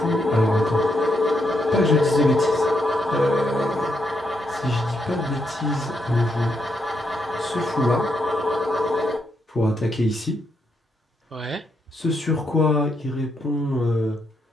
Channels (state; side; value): normal; both; correlation 0.79